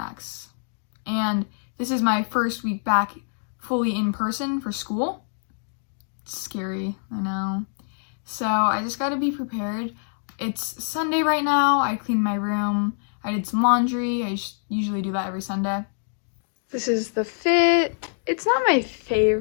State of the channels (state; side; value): silent; right; digital silence